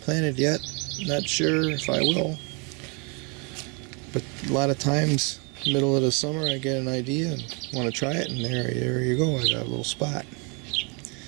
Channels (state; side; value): quieter; left; 33.3 dB